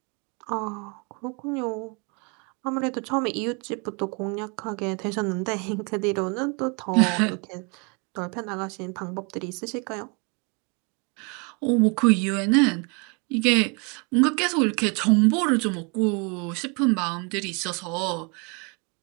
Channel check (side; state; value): left; quieter; 32.9 dB